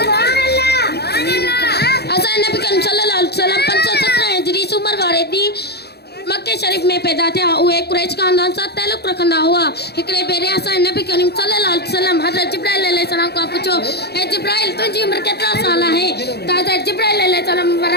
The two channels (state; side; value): late; right; 0.47 ms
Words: वसल्लम। असांजे नबी करीम सल्लल्लाहु अलैहि वसल्लम 517 हिजरी उमर वारे ॾींहुं मक्के शरीफ में पैदा थिया। उहे कुरैश खानदान सां ताल्लुक़ रखंदा हुआ। हिकिड़े भेरे असांजे नबी करीम सल्लल्लाहु अलैहि वसल्लम हज़रत जिब्राइल अलैहिस्सलाम खां पुछो, हे जिब्राइल तुंहिंजी उमिरि केतिरा साल आहे? त हज़रत जिब्राइल अलैहिस्सलाम